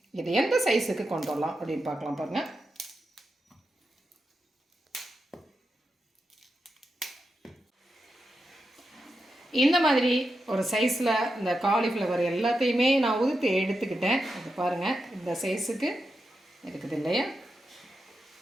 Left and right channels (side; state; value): both; normal; correlation 0.88